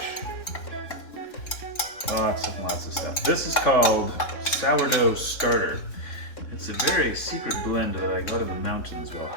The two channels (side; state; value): right; late; 3.9 ms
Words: Lots of stuff. This is called sourdough starter. It's a very secret blend that I got in the mountains while